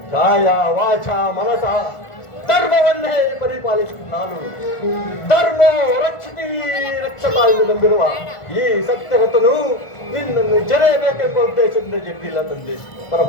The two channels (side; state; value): right; late; 1.5 ms